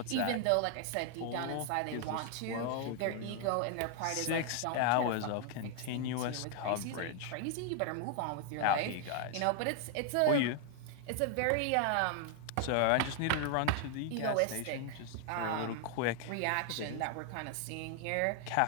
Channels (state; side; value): different; both; correlation 0.00